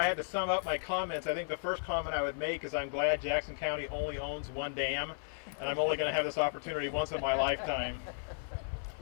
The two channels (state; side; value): silent; right; 55 dB below the other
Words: had to sum up my comments, I think the first comment I would make is I'm glad Jackson County only owns one dam, and I'm only going to have this opportunity once in my lifetime.